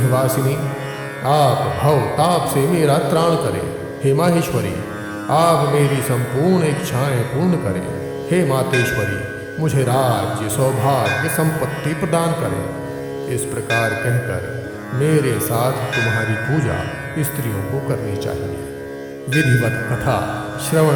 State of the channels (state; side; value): identical; both; correlation 1.00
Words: आप भव ताप से मेरा त्राण करें। हे माहेश्वरी, आप मेरी संपूर्ण इच्छाएं पूर्ण करें। हे मातेश्वरी, मुझे राज्य, सौभाग्य, संपत्ति प्रदान करें। इस प्रकार कहकर मेरे साथ तुम्हारी पूजा स्त्रियों को करनी चाहिए। विधिवत कथा